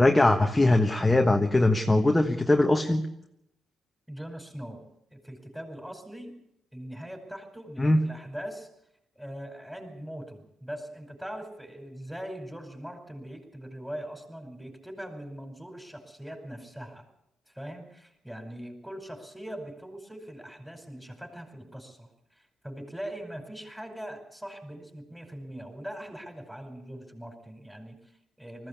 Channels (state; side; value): normal; both; correlation 0.95